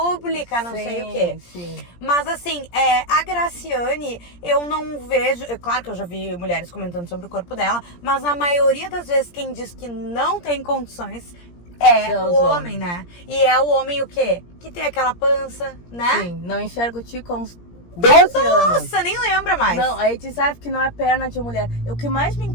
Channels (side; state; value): right; late; 17 ms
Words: não sei o quê. Sim. Mas assim, a Graciane, eu não vejo. Claro que eu já vi mulheres comentando sobre o corpo dela, mas a maioria das vezes quem diz que não tem condições é São o os homem, né? E é o homem o quê? Que tem aquela pança, né? Sim. Não enxergo o Tico há uns 12 anos. Nossa, nem lembra mais. Não, aí tu sabe que não é perna de mulher. O que mais me